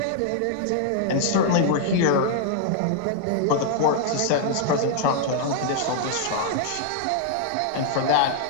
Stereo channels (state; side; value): different; both; correlation -0.01